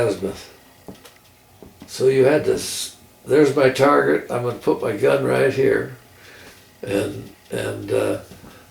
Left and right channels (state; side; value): identical; both; correlation 1.00